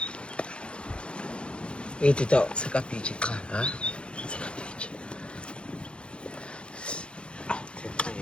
Iti tao Sakapichi ka. sakapichi.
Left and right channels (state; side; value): late; right; 0.057 ms